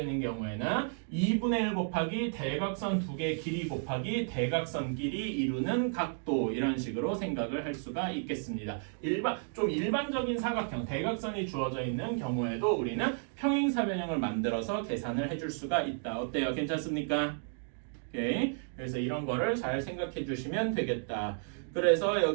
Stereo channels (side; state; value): left; silent; 56 dB below the other